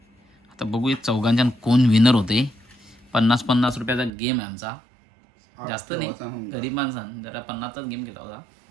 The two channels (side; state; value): left; drops out; at 4.1 s